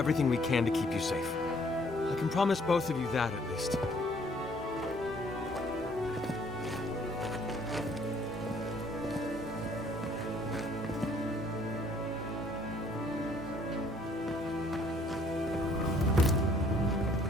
we can to keep you safe. I can promise both of you that, at least.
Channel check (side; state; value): both; normal; correlation 0.61